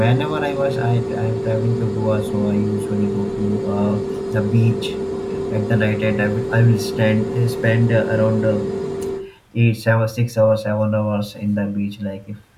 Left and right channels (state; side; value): identical; both; correlation 1.00